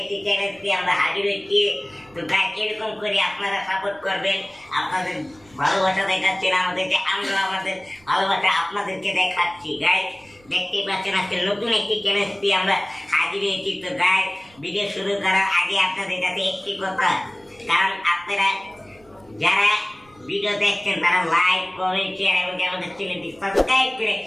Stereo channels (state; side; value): noise; right; rumble, 29 dB below the sound